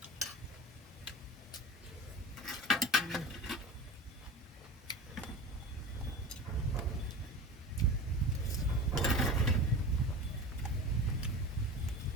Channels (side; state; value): both; normal; correlation 0.32